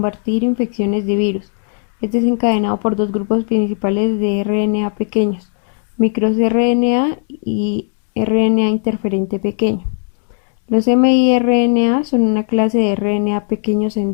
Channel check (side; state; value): right; silent; 57 dB below the other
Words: infecciones de virus. Es desencadenado por dos grupos principales de RNA pequeños, microRNA y RNA interferente pequeño. Los miRNA son una clase de RNA pequeños